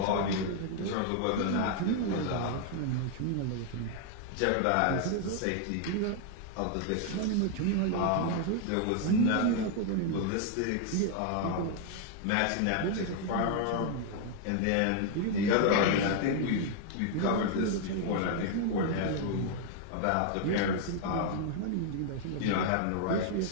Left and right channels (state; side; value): different; both; correlation 0.00